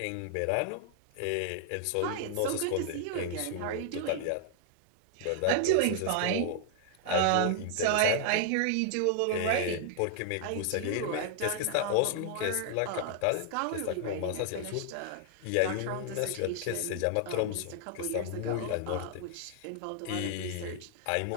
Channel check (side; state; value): both; different; correlation 0.00